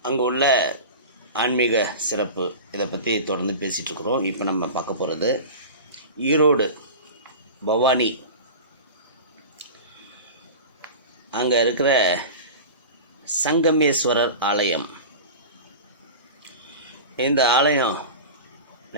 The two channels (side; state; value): both; inverted; correlation -0.31